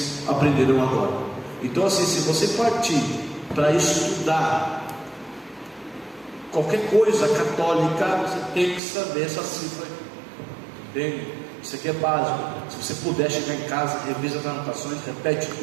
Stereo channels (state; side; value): drops out; left; at 8.8 s